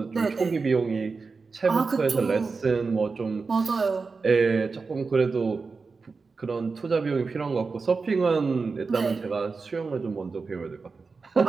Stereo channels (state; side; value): quieter; left; 4.5 dB